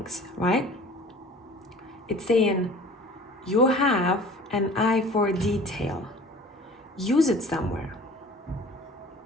right? It's saying you have an eye for detail. Use it somewhere.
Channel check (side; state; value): both; normal; correlation 0.45